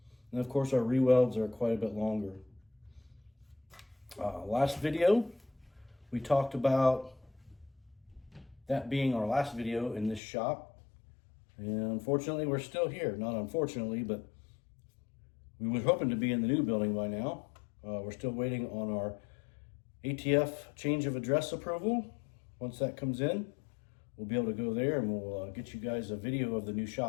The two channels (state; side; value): drops out; right; at 10.2 s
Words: And of course, our rewelds are quite a bit longer. Last video, we talked about that being our last video in this shop. And unfortunately, we're still here. Not unfortunately, but we were hoping to be in the new building by now. We're still waiting on our ATF change of address approval. Once that comes in, we'll be able to go there and we'll get you guys a video of the new